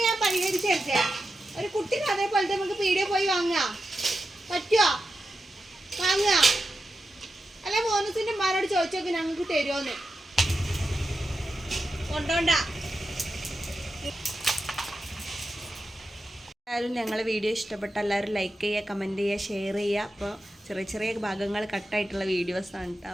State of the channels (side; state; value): both; normal; correlation 0.89